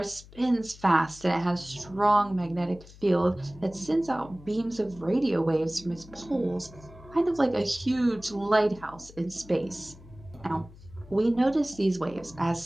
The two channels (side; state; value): left; noise; hum, 21 dB below the sound